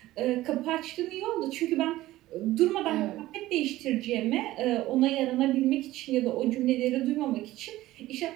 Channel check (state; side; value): quieter; left; 16.3 dB